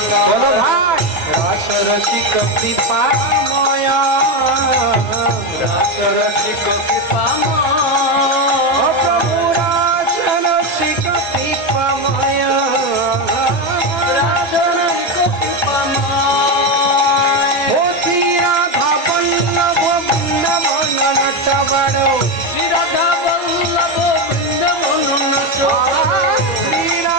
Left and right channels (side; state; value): both; normal; correlation 0.12